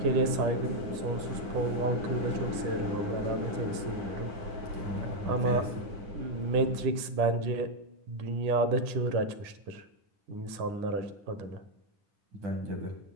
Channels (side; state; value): left; late; 9.8 ms